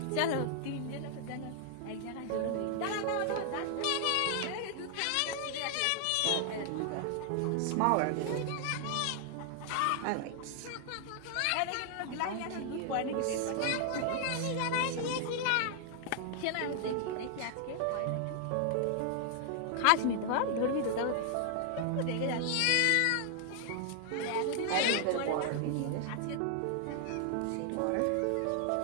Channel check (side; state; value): both; different; correlation 0.00